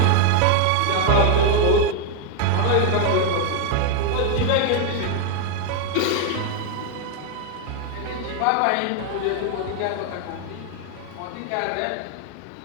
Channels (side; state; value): both; different; correlation 0.01